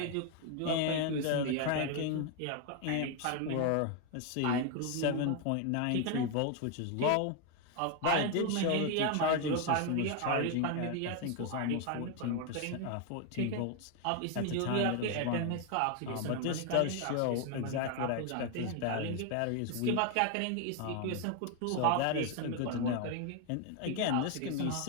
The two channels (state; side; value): different; both; correlation 0.01